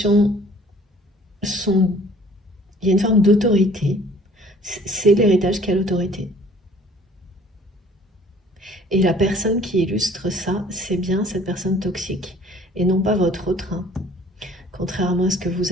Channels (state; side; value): normal; both; correlation 0.53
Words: sont... Il y a une forme d'autorité. C'est l'héritage qui a l'autorité. Et la personne qui illustre ça, c'est bien cette personne toxique, et non pas votre autre, hein, contrairement à ce que vous